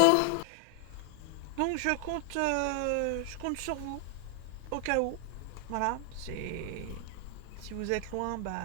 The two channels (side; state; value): both; different; correlation 0.00